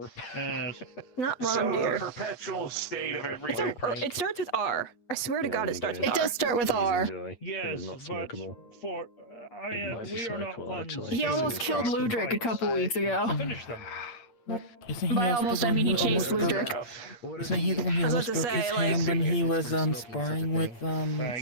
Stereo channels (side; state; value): right; late; 8.4 ms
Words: Yes. Not So wrong, the dear. perpetual state of It's everything. it starts with R. I swear to God, it starts with It R. does start with R. Yes, not but smokable. for we are not ones. He almost killed Ludric a couple weeks ago. Finish them. Isn't he By also almost, the I one mean he who chased almost broke? Ludric. Isn't he the one who I was almost about to broke his say, like- hand when he was sparring with